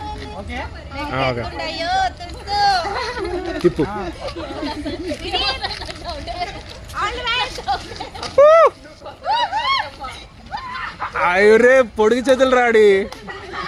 అయ్యో తిప్పు. అయ్యరే పొడిగి చేతులు రాడి.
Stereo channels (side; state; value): both; identical; correlation 1.00